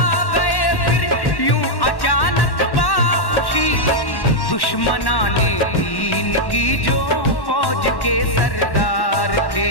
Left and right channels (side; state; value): right; late; 1.1 ms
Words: गए फिर यूं अचानक बाखुशी। दुश्मनाने दीन की जो फौज के सरदार थे,